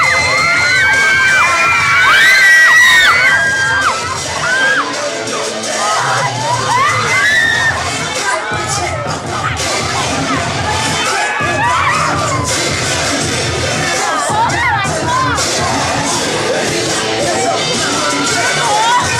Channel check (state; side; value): identical; both; correlation 1.00